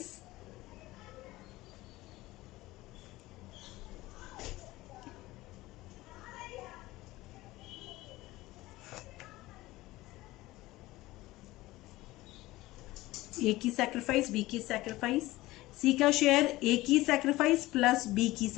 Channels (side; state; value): right; quieter; 18.4 dB